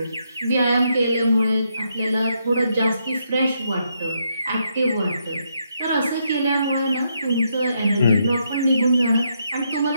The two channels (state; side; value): inverted; both; correlation -0.78